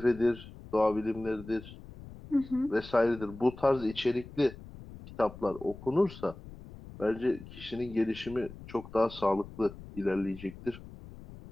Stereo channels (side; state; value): left; noise; rumble, 16 dB below the sound